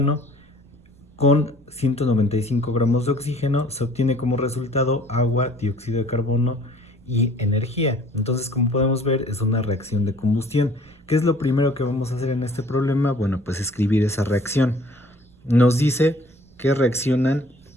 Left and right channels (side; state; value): right; noise; rumble, 28 dB below the sound